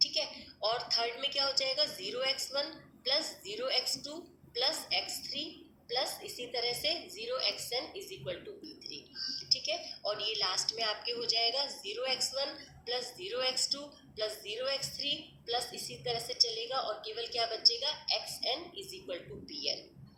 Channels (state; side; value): identical; both; correlation 1.00